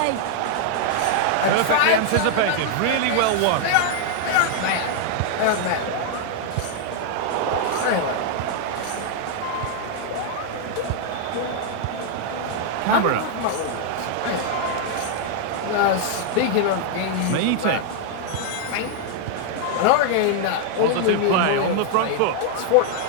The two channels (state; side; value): different; both; correlation 0.00